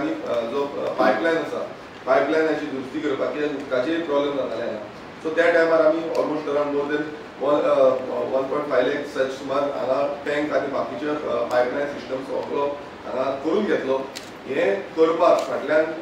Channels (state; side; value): identical; both; correlation 1.00